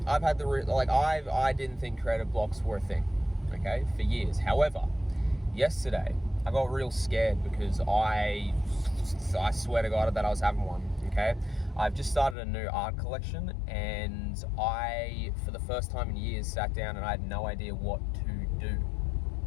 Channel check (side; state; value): right; drops out; at 12.4 s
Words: I've had I didn't think creative blocks were a thing, okay, for years. However, yesterday, I got real scared because I swear to God that I was having one, okay? I've just started a new art collection, and I, for the first time in years, sat down and I had no idea what to do.